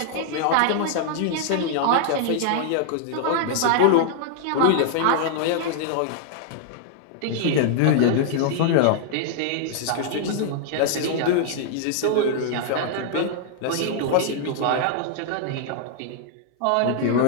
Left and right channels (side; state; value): both; different; correlation 0.00